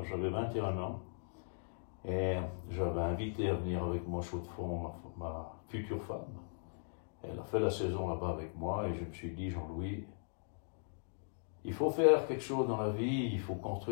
j'avais 21 ans, et j'avais invité à venir avec moi à Chaux-de-Fonds ma future femme. Elle a fait la saison là-bas avec moi, et je me suis dit, Jean-Louis, il faut faire quelque chose dans la vie, il faut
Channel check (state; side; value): silent; right; digital silence